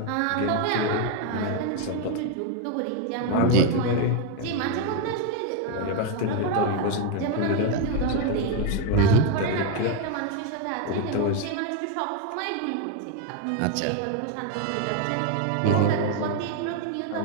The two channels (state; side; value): different; both; correlation 0.01